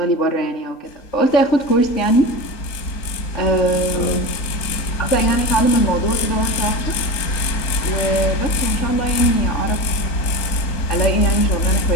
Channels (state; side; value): late; right; 3.8 ms